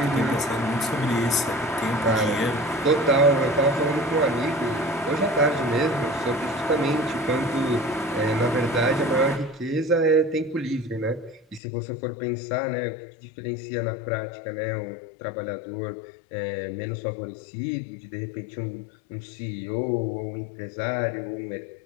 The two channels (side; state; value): right; drops out; at 11.6 s